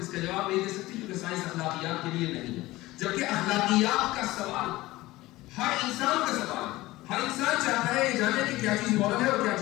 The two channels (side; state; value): right; quieter; 18.5 dB